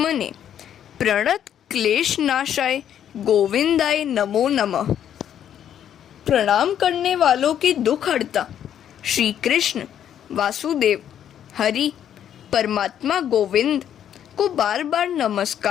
प्रणत क्लेश नाशाय गोविंदाय नमो नमः। प्रणाम करने वालों के दुख हरता श्री कृष्ण वासुदेव हरि परमात्मा गोविंद को बार बार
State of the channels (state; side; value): quieter; right; 9.8 dB